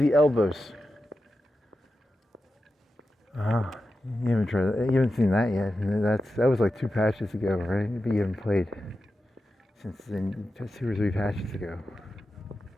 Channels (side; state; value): both; normal; correlation 0.91